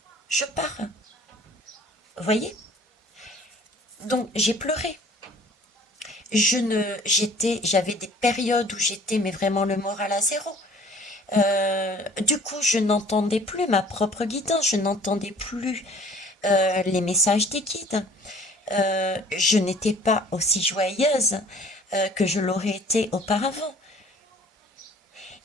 je pars. Vous voyez? Donc, j'ai pleuré. J'avais des périodes où j'étais, mais vraiment le moral à zéro. Du coup, je n'entendais plus ma propre guidance, je n'entendais plus les messages des guides. Je n'étais pas aussi joyeuse que je l'aurais été auparavant.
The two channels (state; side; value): normal; both; correlation 0.51